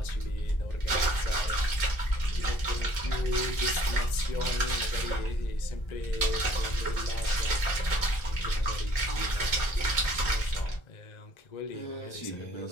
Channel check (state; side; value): late; right; 1.3 ms